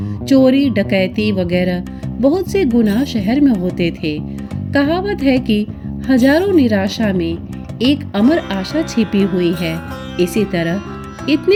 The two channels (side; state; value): both; identical; correlation 1.00